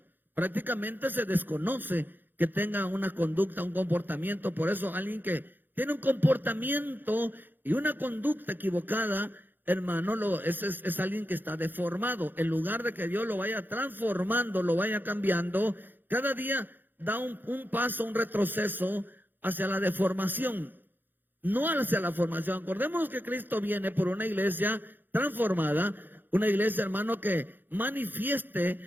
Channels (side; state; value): left; late; 0.090 ms